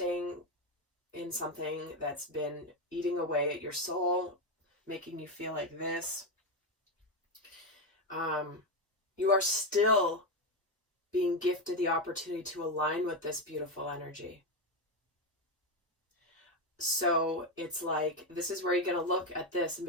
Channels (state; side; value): normal; both; correlation 0.09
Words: in something that's been eating away at your soul, making you feel like this, you are still being gifted the opportunity to align with this beautiful energy. So it's like, this is where you're going to look at this and